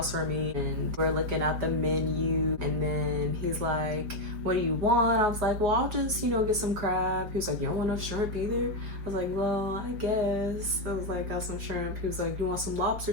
from me and we're looking at the menu and then he's like, what do you want? I was like, well, I'll just, get some crab. He was like, you don't want no shrimp either? I was like, well, I guess. I was like, got some shrimp. He was like, you want some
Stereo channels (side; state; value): left; late; 4.8 ms